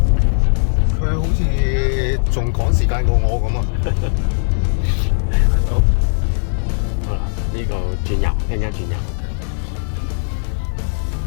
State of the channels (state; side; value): silent; right; digital silence